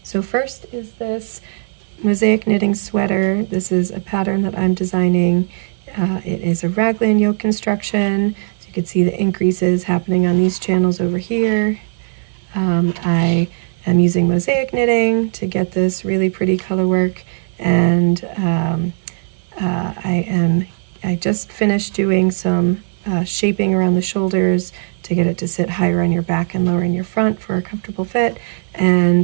So first is this mosaic knitting sweater. This is a pattern that I'm designing. It is a raglan yoke construction, so you can see the increases happening on these channels over here. I am using mosaic knitting to get this really pretty color work, and I just finished doing some shaping around the shoulders to get it to sit higher on your back and lower in your front for a comfortable fit.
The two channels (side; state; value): left; silent; digital silence